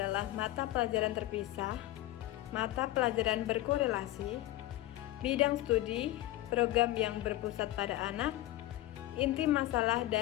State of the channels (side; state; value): right; quieter; 15.8 dB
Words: mata pelajaran terpisah, mata pelajaran berkorelasi, bidang studi, program yang berpusat pada anak, inti masalah,